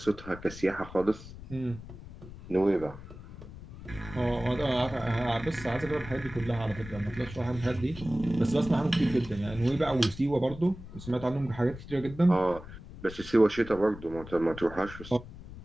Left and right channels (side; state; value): left; noise; rumble, 14 dB below the sound